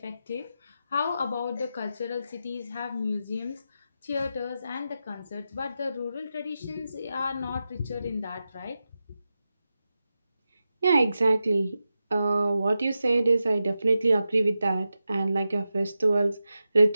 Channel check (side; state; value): both; inverted; correlation -0.90